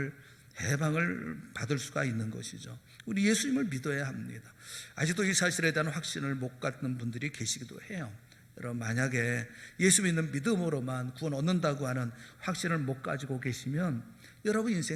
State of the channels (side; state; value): both; identical; correlation 1.00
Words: 해방을 받을 수가 있는 것이죠. 우리 예수님을 믿어야 합니다. 아직도 이 사실에 대한 확신을 못 갖는 분들이 계시기도 해요. 여러분, 만약에 예수 믿는 믿음으로만 구원 얻는다고 하는 확신을 못 가지고 계시면 여러분